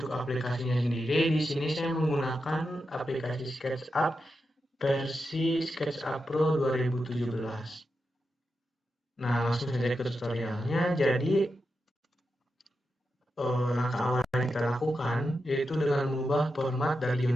aplikasinya sendiri di sini saya menggunakan aplikasi SketchUp versi SketchUp Pro 2017. Nah, langsung saja ke tutorialnya. Jadi langkah awal yang kita lakukan yaitu dengan mengubah format dari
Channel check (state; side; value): normal; both; correlation 0.88